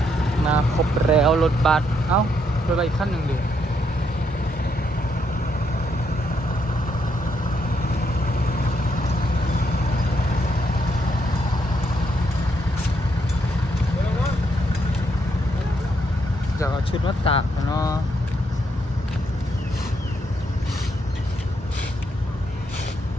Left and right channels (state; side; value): normal; both; correlation 0.76